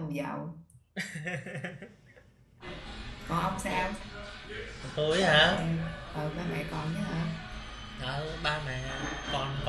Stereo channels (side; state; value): both; identical; correlation 1.00